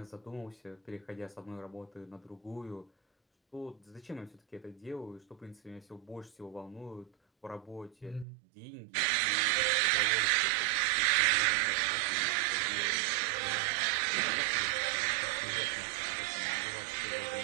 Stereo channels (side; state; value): left; drops out; at 8.2 s